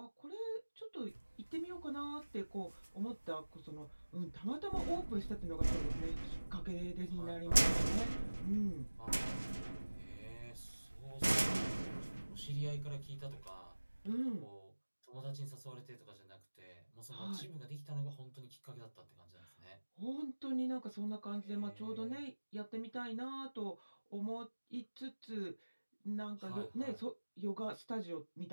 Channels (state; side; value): inverted; both; correlation -1.00